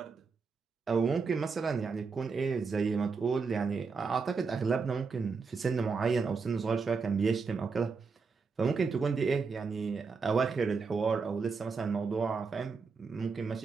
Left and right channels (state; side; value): quieter; left; 5.0 dB